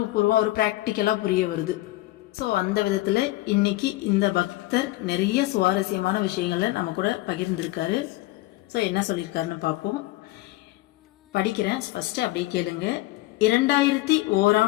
பூர்வம் ஒரு பிராக்டிக்கலா புரிய வருது. ஸோ அந்த விதத்துல இன்னைக்கு இந்த பக்தர் நிறைய சுவாரஸ்யமான விஷயங்களை நம்ம கூட பகிர்ந்திருக்காரு. ஸோ என்ன சொல்லியிருக்காருன்னு பார்ப்போம். படிக்கிறேன், ஃபர்ஸ்ட் அப்படியே கேளுங்க.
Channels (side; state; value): right; quieter; 18.1 dB